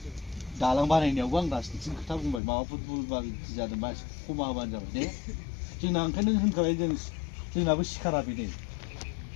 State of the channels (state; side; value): drops out; right; at 2.4 s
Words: दालां बानायनायावबो आं राजनिथिनि खोथा बुंबाय माबाफोर बुलबाल जादोंबा एसे खमा होबानो जाबाय दे जोंना ओंखायनो होनखाबाय जोंनाबो सिखारा बेनो